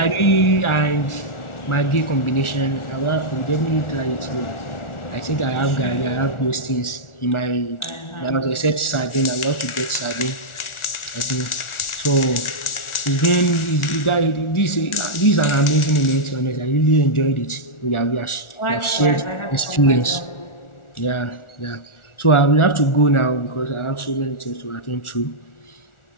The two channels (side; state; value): right; late; 1.4 ms